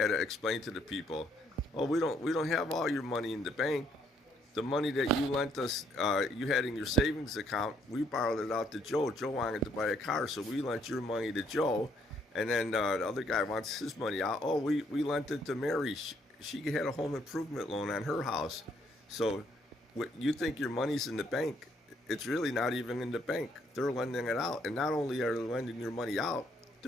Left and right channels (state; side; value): normal; both; correlation 0.69